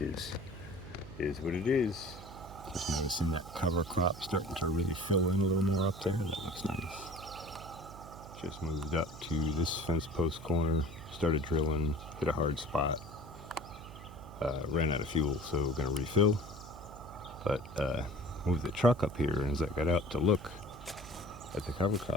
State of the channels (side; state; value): right; noise; hum, 15 dB below the sound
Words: is what it is. Just noticing that cover crop starting to really fill in a little more up there. That looks nice. Just moved up to this fence post corner, started drilling, hit a hard spot. Ran out of fuel, so we're going to refill. But moved the truck up here, and as I got out to look at the cover